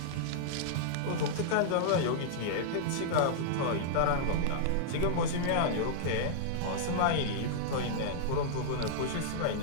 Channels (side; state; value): both; different; correlation -0.02